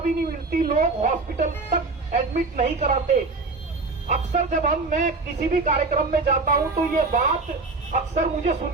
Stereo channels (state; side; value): quieter; left; 3.7 dB